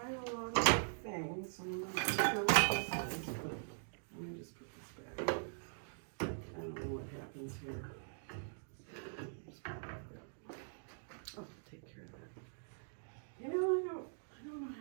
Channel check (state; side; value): silent; left; digital silence